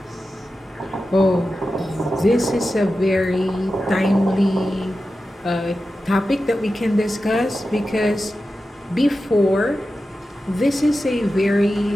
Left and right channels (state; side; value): normal; both; correlation 0.92